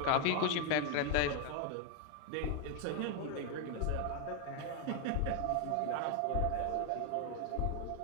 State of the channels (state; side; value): different; both; correlation 0.00